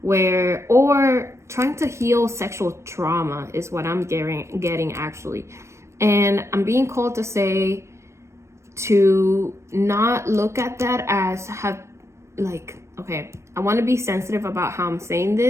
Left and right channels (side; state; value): left; late; 0.14 ms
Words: or trying to heal sexual trauma is what I'm getting actually. And I'm being called to say to not look at that as okay, I want to be sensitive about how I'm saying